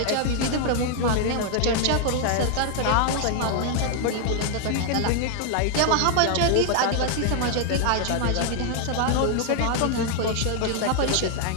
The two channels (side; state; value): both; different; correlation 0.00